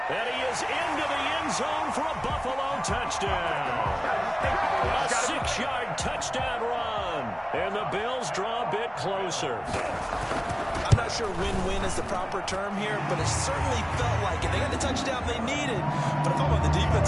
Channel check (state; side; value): identical; both; correlation 1.00